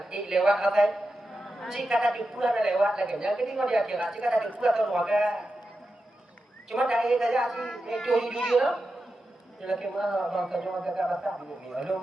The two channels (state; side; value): normal; both; correlation 0.90